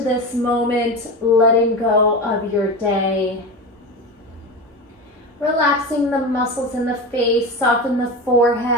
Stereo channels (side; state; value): both; normal; correlation 0.24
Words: this moment, letting go of your day. Relaxing the muscles in the face, soften the